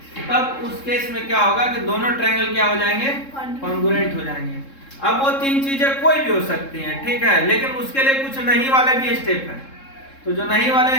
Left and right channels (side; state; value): right; late; 3.7 ms